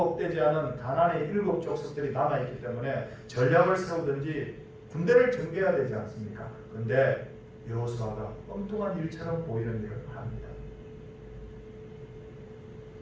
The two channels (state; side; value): identical; both; correlation 1.00